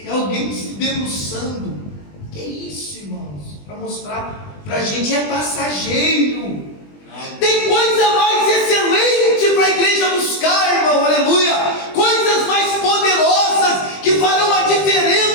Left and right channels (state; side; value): late; right; 20 ms